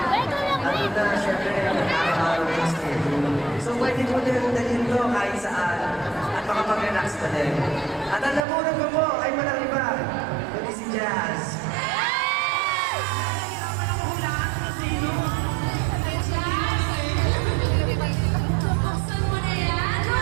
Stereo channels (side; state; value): left; drops out; at 8.5 s